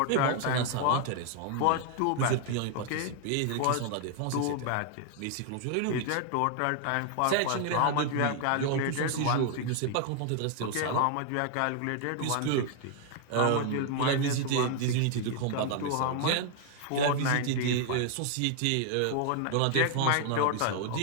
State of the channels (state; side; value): different; both; correlation 0.00